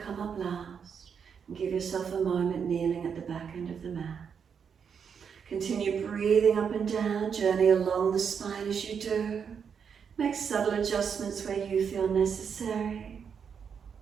up last. And give yourself a moment kneeling at the back end of the mat. Continue breathing up and down, journey along the spine as you do. Make subtle adjustments where you feel necessary.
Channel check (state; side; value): quieter; left; 6.9 dB